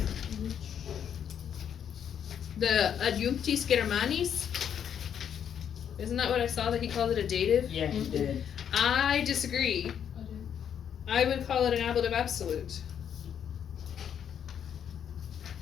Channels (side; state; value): right; quieter; 8.6 dB